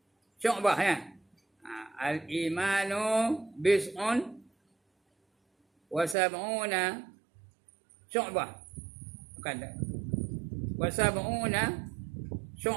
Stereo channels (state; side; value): drops out; left; at 6.2 s